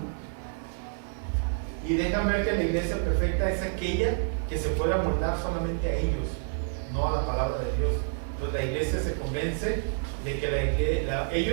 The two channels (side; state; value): left; silent; digital silence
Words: ver que la iglesia perfecta es aquella que se puede amoldar solamente a ellos, no a la palabra de Dios. Entonces la iglesia se convence de que